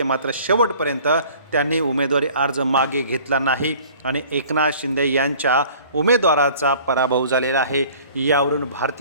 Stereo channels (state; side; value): inverted; both; correlation -0.50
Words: मात्र शेवटपर्यंत त्यांनी उमेदवारी अर्ज मागे घेतला नाही आणि एकनाथ शिंदे यांच्या उमेदवाराचा पराभव झालेला आहे. यावरून